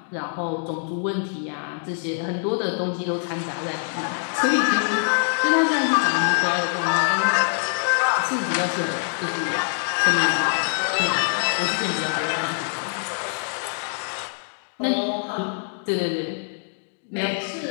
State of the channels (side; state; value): right; silent; digital silence